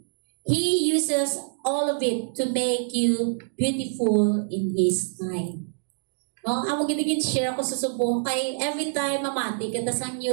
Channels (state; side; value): silent; left; digital silence